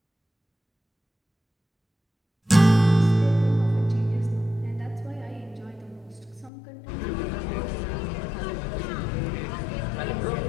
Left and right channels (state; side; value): drops out; right; at 6.5 s